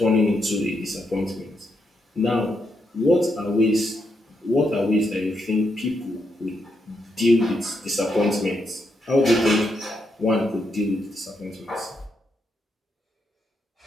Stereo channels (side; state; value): both; normal; correlation 0.81